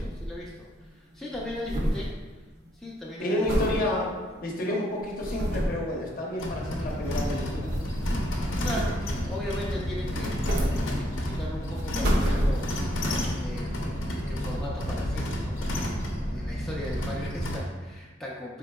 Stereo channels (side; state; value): both; normal; correlation 0.73